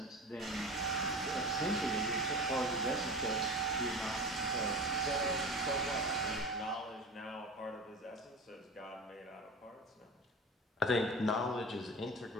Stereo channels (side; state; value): both; normal; correlation 0.32